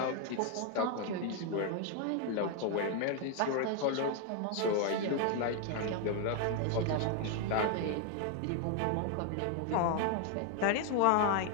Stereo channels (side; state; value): both; different; correlation 0.01